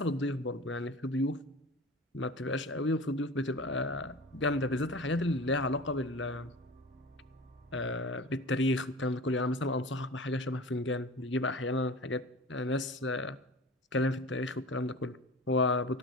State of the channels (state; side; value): normal; both; correlation 0.36